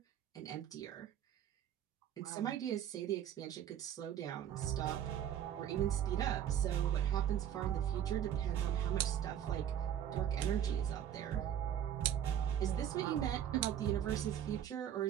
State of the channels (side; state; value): left; quieter; 10.1 dB